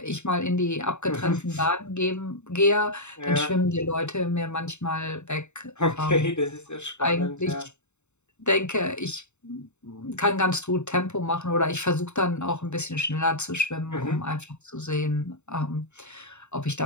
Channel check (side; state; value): right; late; 0.82 ms